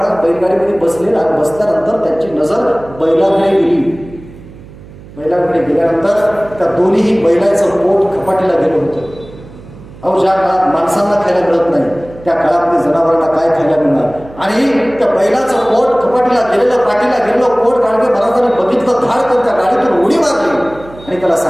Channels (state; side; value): noise; right; hum, 19 dB below the sound